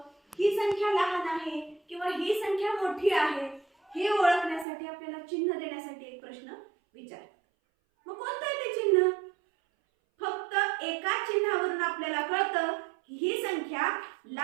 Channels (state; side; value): drops out; left; at 4.7 s